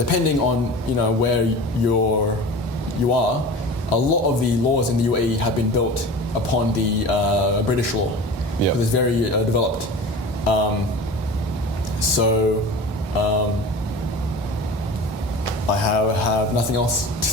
on where you are, a lot of the laws in the UAE have been built upon the British law. Yeah, it's very developed. I have nothing else to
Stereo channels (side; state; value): both; normal; correlation 0.36